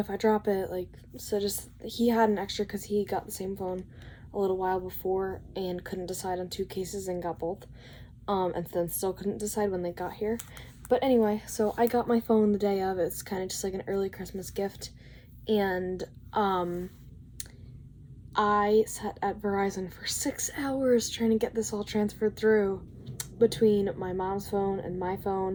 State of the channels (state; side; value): identical; both; correlation 1.00